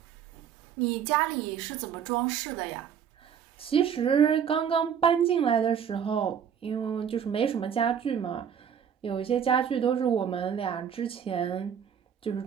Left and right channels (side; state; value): left; quieter; 8.1 dB